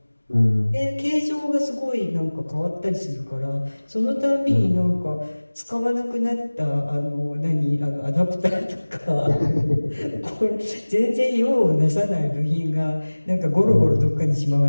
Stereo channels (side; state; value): both; inverted; correlation -1.00